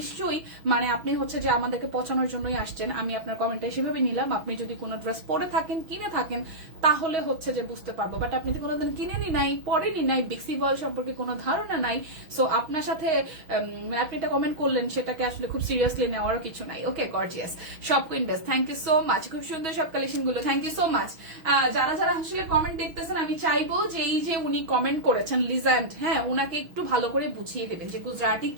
মানে আপনি হচ্ছে যে আমাদেরকে পচানোর জন্যই আসছেন, আমি আপনার কমেন্টটা সেভাবে নিলাম। আপনি যদি কোনো ড্রেস পরে থাকেন, কিনে থাকেন, তাহলে হচ্ছে যে বুঝতে পারবো। বাট আপনি তো কোনোদিন কিনেনি নাই, পরেনি নাই, বেক্সি বয়েল সম্পর্কে কোনো ধারণা নাই। সো আপনার সাথে আপনি এটা কমেন্ট করলেন, সেটাকে আসলে খুব সিরিয়াসলি নেওয়ার কিছু নাই। Okay, gorgeous shop queen best, thank you so much, খুব সুন্দর সব কালেকশন গুলো, থ্যাংক ইউ সো মাচ। যারা আসলে কমেন্ট দেখতেছেন, আমি চাইবো যে এই যে উনি কমেন্ট করেছেন লিজেন্ড, হ্যাঁ, উনাকে একটু ভালো করে বুঝিয়ে দেবেন যে গুজরাটি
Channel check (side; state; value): left; late; 6.1 ms